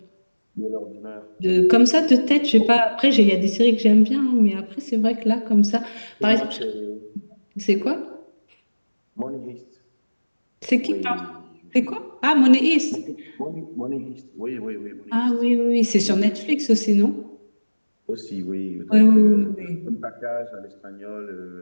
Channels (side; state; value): both; inverted; correlation -1.00